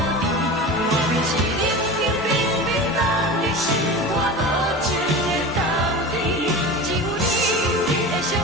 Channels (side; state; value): both; normal; correlation 0.31